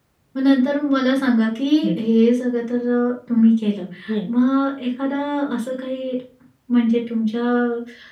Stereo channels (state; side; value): identical; both; correlation 1.00